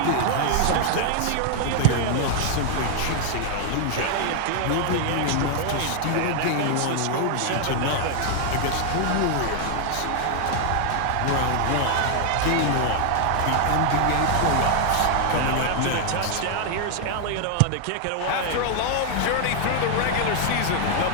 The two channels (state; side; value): different; both; correlation 0.00